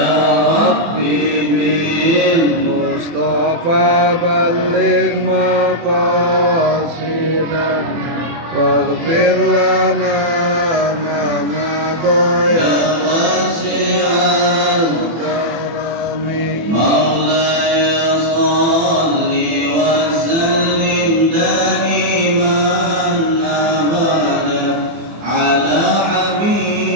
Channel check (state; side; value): late; left; 24 ms